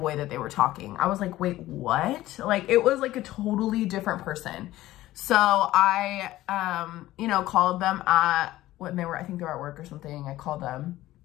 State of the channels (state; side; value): quieter; right; 15.8 dB